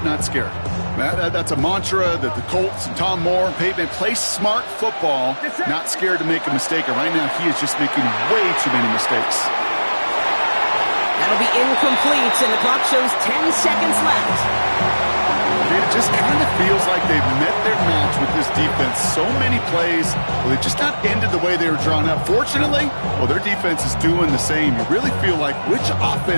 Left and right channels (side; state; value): both; inverted; correlation -1.00